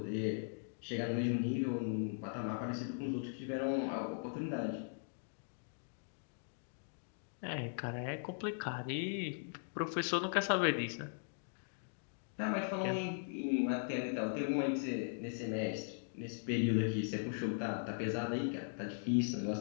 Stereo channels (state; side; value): silent; right; digital silence